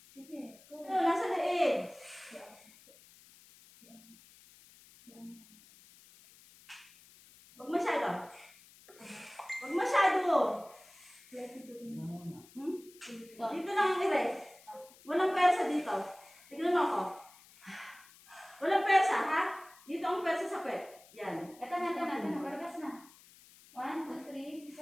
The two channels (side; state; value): left; noise; hiss, 24 dB below the sound